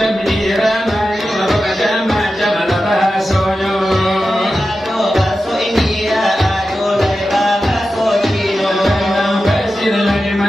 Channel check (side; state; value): both; normal; correlation 0.92